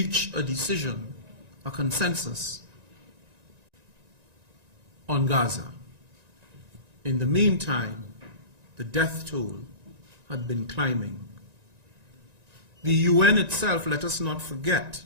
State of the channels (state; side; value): late; left; 1.9 ms